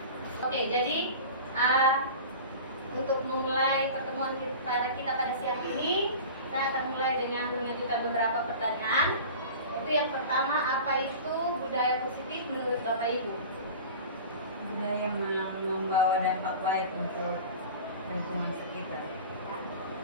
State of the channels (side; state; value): both; inverted; correlation -0.36